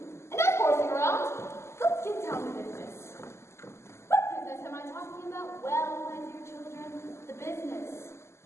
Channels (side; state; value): right; late; 0.13 ms